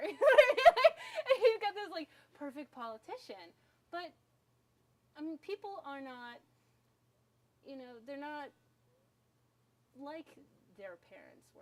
And you've got this like perfect politician, but I mean, people are not. They're not like their parents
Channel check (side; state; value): both; identical; correlation 1.00